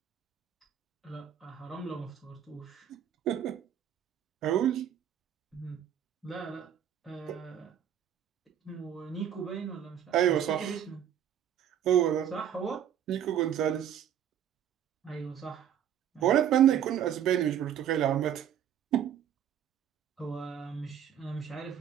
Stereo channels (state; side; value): quieter; left; 9.7 dB